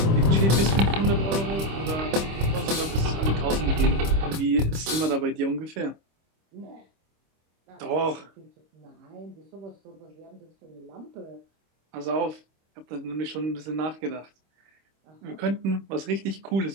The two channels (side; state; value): left; late; 25 ms